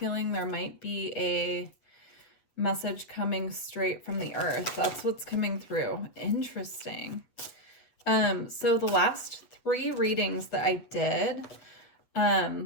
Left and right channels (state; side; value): late; right; 8.4 ms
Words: there might be a message coming straight from the Earth. That's what's coming through. Interesting. So the last 3 readings that I did,